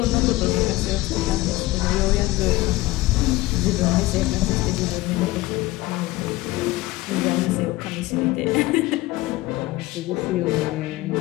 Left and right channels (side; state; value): right; quieter; 18.7 dB